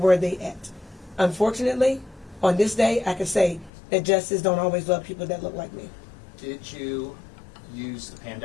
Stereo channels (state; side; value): drops out; right; at 3.7 s